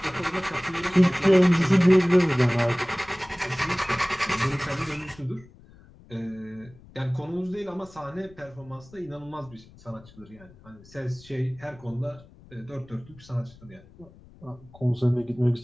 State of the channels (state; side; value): noise; left; rumble, 23 dB below the sound